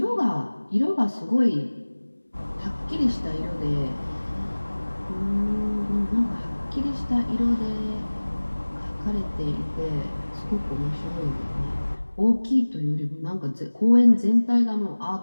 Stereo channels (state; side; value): inverted; both; correlation -1.00